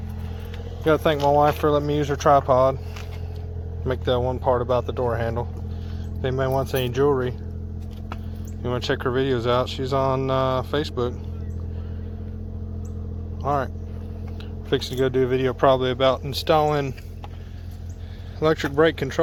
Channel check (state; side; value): identical; both; correlation 1.00